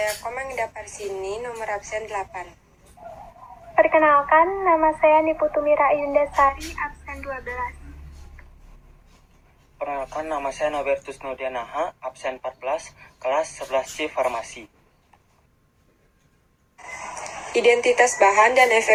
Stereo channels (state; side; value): identical; both; correlation 1.00